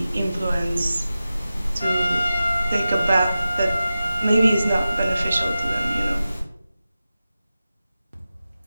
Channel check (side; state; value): both; inverted; correlation -0.94